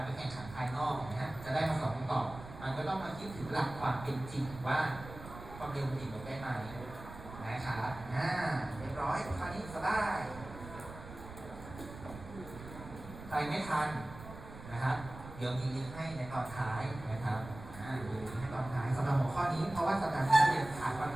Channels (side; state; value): right; noise; rumble, 14 dB below the sound